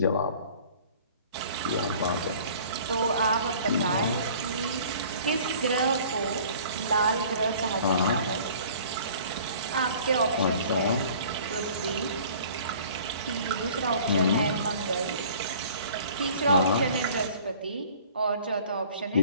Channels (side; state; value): both; inverted; correlation -0.49